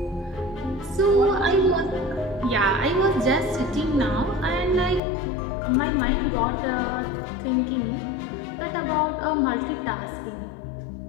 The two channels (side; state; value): right; drops out; at 5.0 s